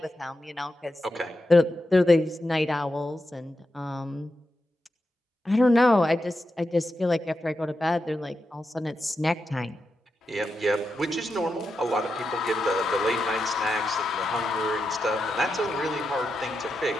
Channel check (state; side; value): normal; both; correlation 0.88